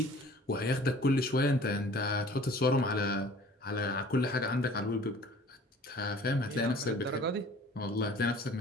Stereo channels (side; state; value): both; normal; correlation 0.49